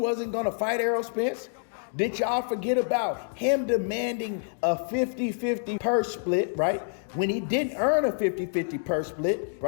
going to fight Errol Spence? Did y'all forget about him demanding a 50-50 purse split, right? When he didn't earn a 50-50 purse split,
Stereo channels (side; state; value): right; silent; digital silence